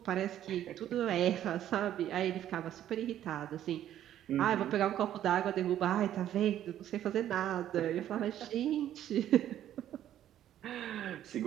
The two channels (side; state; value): left; quieter; 11.6 dB